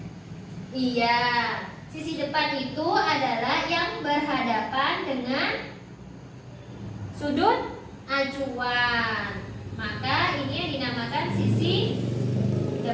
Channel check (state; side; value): identical; both; correlation 1.00